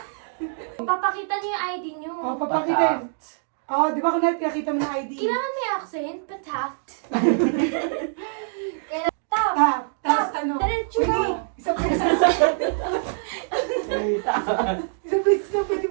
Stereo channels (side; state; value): left; silent; digital silence